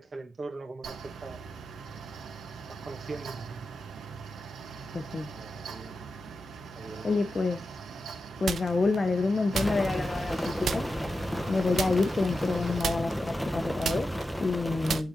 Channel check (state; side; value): normal; both; correlation 0.90